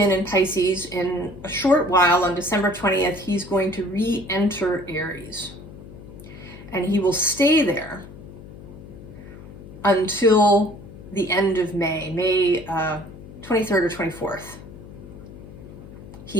in Pisces. In a short while, on December 20th, he's going to re-enter Aries. And he will stay there until the end of May 23rd or 24th.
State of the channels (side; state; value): left; noise; hum, 16 dB below the sound